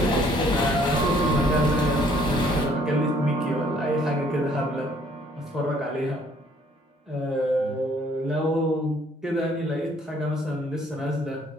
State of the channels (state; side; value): normal; both; correlation 0.62